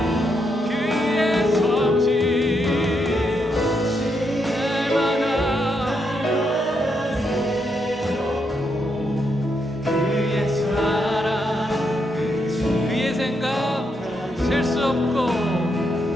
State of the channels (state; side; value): normal; both; correlation 0.80